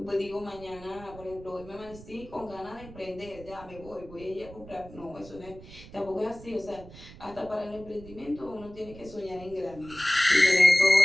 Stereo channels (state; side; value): noise; right; rumble, 17 dB below the sound